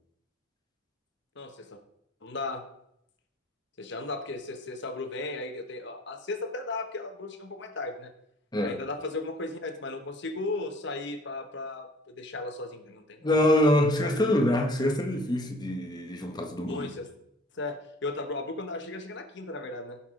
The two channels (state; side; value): normal; both; correlation 0.51